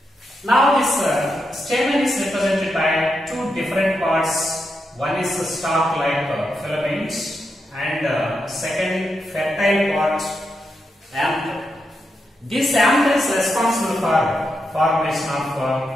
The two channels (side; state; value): both; normal; correlation 0.85